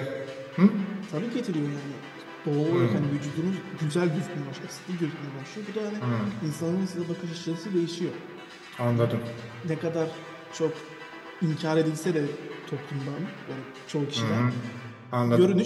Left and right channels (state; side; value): identical; both; correlation 1.00